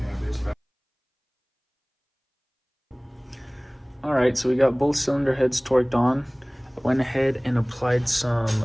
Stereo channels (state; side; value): identical; both; correlation 1.00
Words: All right, so we got both cylinder heads torqued on. I went ahead and applied some